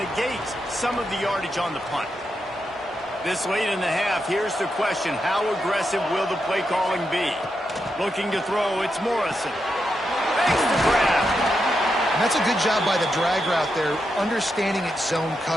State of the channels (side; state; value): both; normal; correlation 0.85